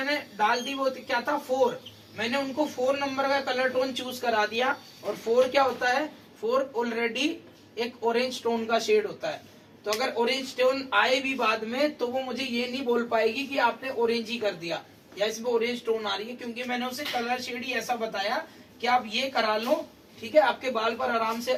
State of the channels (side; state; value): both; identical; correlation 1.00